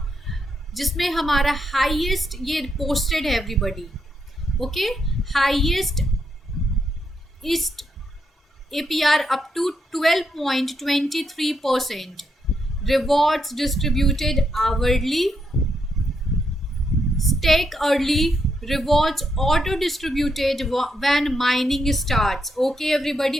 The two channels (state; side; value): normal; both; correlation 0.80